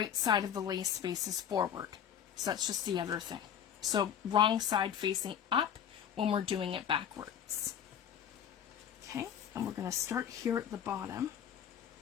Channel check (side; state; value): right; quieter; 8.8 dB